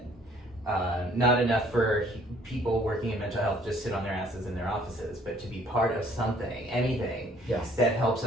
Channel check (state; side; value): normal; both; correlation 0.59